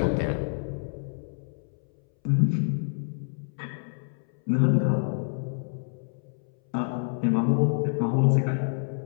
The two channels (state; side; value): silent; right; 60 dB below the other